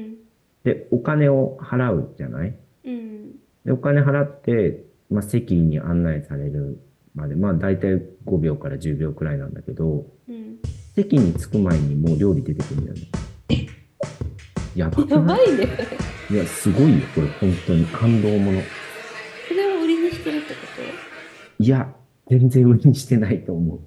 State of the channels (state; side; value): identical; both; correlation 1.00